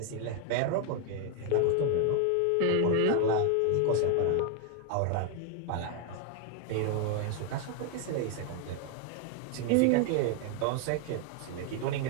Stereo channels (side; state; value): both; different; correlation 0.01